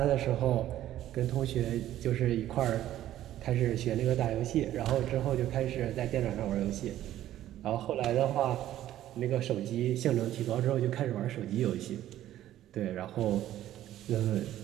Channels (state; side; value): quieter; left; 13.0 dB